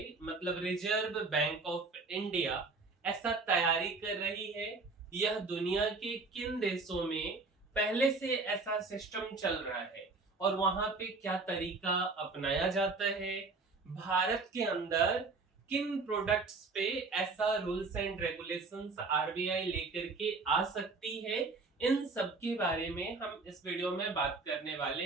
मतलब रिजर्व बैंक ऑफ इंडिया ऐसा तैयारी कर रही है। यह दुनिया के किन देशों में पहले से ऐसा सिस्टम चल रहा है और वहां पे क्या तरीका अपनाया जाता है। भारत के अंदर किन प्रोडक्ट्स पे ऐसा रूल्स एंड रेगुलेशंस आरबीआई लेकर के आ सकती है, इन सब के बारे में हम इस वीडियो में बात करने वाले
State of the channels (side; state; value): left; quieter; 3.9 dB